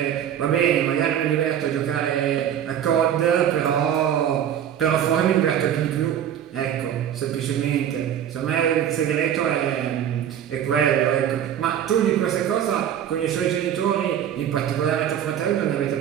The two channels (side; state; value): left; quieter; 9.8 dB